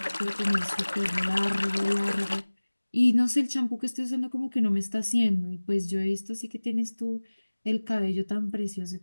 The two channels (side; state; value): both; inverted; correlation -1.00